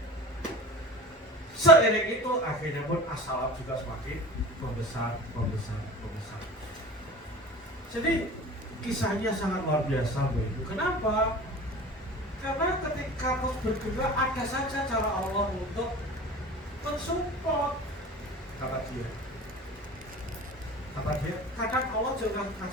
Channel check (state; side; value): normal; both; correlation 0.37